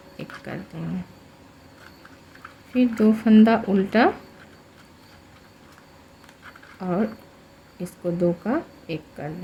1 कर देंगे। फिर 2 फंदा उल्टा और इसको 2 का 1 कर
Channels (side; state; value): both; identical; correlation 1.00